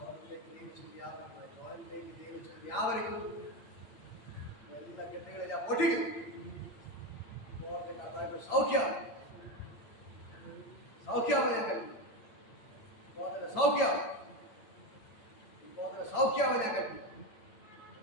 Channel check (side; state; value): right; late; 8.9 ms